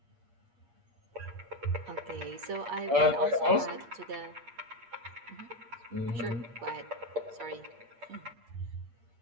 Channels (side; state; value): left; late; 8.6 ms